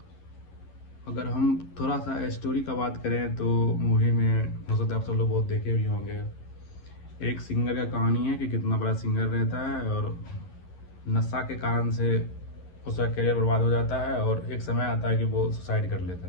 अगर हम थोड़ा सा स्टोरी का बात करें तो मूवी में हो सकता है आप सब लोग बहुत देखे भी होंगे। एक सिंगर का कहानी है कि कितना बड़ा सिंगर रहता है और नशा के कारण से उसका करियर बर्बाद हो जाता है, और एक समय आता है कि वो सुसाइड कर लेता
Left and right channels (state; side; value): late; right; 11 ms